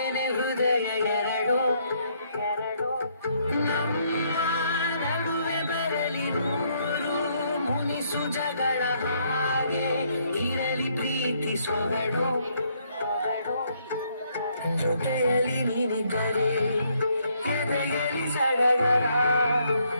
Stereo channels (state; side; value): inverted; both; correlation -0.71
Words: ಹೃದಯ ಎರಡು ನಮ್ಮ ನಡುವೆ ಬರಲಿ ನೂರು ಮುನಿಸು ಜಗಳ ಹಾಗೆ ಇರಲಿ ಪ್ರೀತಿ ಸೊಗಡು ಜೊತೆಯಲ್ಲಿ ನೀನಿದ್ದರೆ ಎದೆಯಲ್ಲಿ ಸಡಗರ